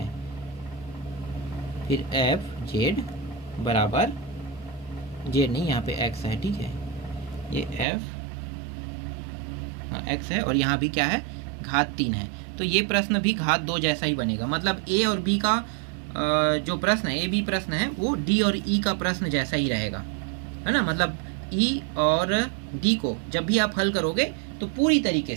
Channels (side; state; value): left; drops out; at 7.9 s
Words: फिर एफ जेड बराबर जेड नहीं, यहाँ पे एक्स है। ठीक है, ये एफ एक्स है और यहाँ भी क्या है? घात 3 है। तो ये प्रश्न भी घात 2 जैसा ही बनेगा। मतलब ए और बी का जो प्रश्न है, ए बी प्रश्न है, वो डी और ई का प्रश्न जैसा ही रहेगा, है ना। मतलब ई और डी को जब भी आप हल करोगे तो पूरी तरीके